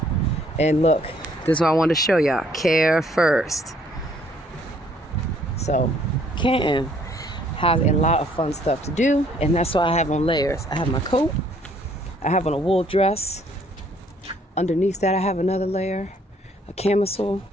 And look, this is what I wanted to show y'all. Care first. So, Canton has a lot of fun stuff to do, and that's why I have on layers. I have my coat, I have on a wool dress. Underneath that, I have another layer, a camisole,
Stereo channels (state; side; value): normal; both; correlation 0.63